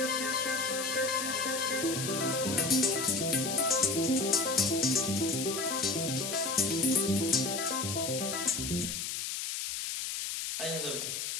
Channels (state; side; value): noise; left; hiss, 3 dB below the sound